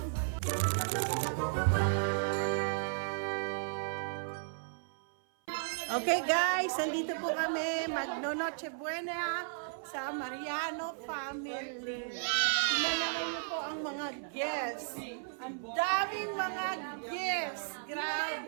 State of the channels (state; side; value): silent; left; 55 dB below the other